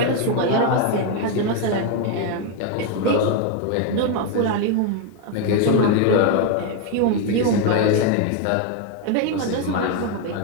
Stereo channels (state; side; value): different; both; correlation 0.01